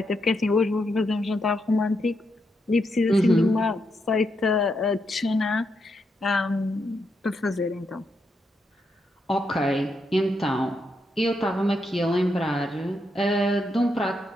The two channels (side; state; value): both; normal; correlation 0.81